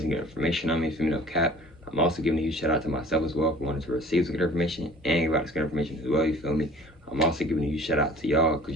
good information on me, for me, no cap. I'm also giving a huge shout out to myself as well for wanting to receive some good information and give out this good information as well, you feel me. I'm also giving a huge shout out to y'all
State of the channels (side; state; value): both; normal; correlation 0.48